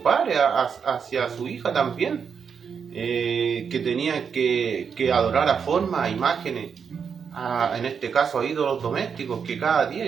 padre hacia su hija también, que tenían que adorar a formas, a imágenes, en este caso a ídolos domésticos, que cada día,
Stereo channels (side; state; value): left; quieter; 6.6 dB